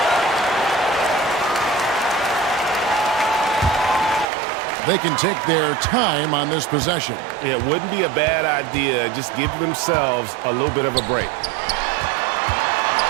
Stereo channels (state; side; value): drops out; left; at 4.2 s